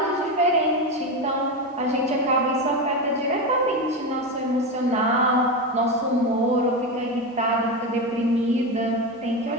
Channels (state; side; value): normal; both; correlation 0.16